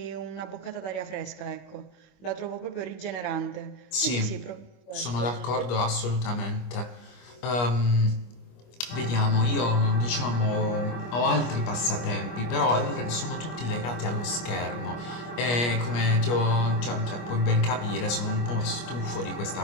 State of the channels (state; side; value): late; right; 25 ms